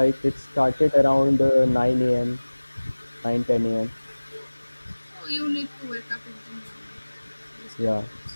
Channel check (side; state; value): both; inverted; correlation -1.00